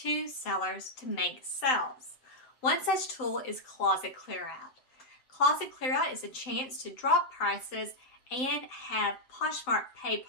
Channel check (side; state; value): right; late; 7.8 ms